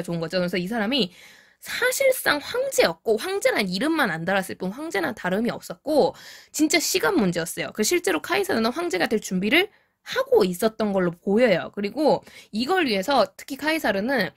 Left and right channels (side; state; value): both; identical; correlation 1.00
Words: 좋은 거죠. 그래서 이 사람이 사실상 황제였고 황제란 이름만 안 달았을 뿐 황제는 다름이 없었고 진짜 시간 문제였어요. 그 실제로 카이사르는 황제가 될 준비를 하고 있었던 걸로 보여요. 그리고 이걸 위해서 특히 카이사르는